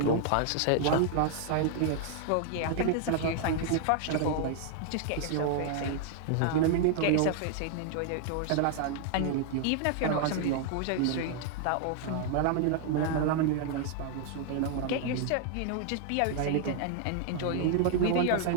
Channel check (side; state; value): both; different; correlation 0.00